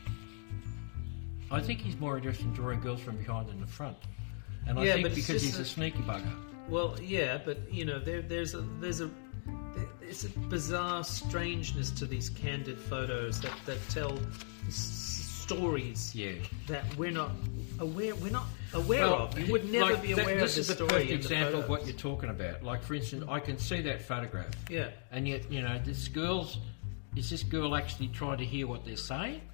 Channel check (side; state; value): right; silent; 53 dB below the other